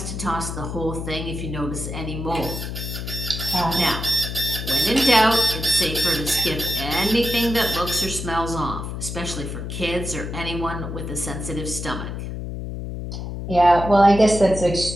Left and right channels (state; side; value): noise; left; hum, 6 dB below the sound